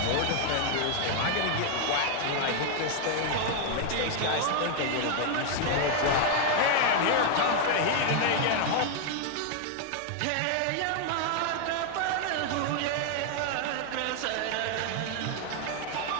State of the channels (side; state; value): both; different; correlation 0.00